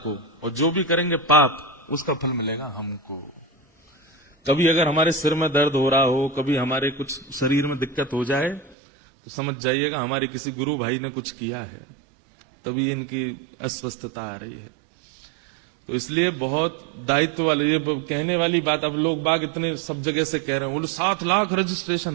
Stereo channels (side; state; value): left; drops out; at 8.8 s